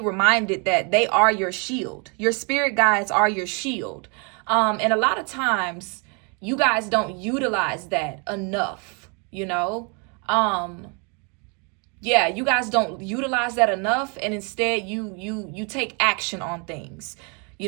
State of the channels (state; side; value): quieter; left; 34.6 dB